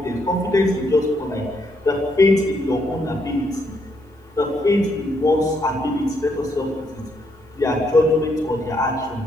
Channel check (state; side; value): normal; both; correlation 0.75